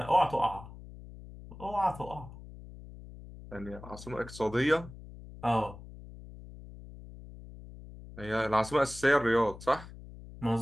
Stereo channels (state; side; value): noise; left; hum, 16 dB below the sound